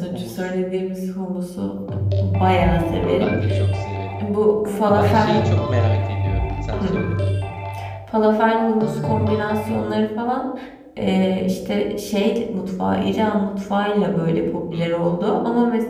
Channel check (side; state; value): both; identical; correlation 1.00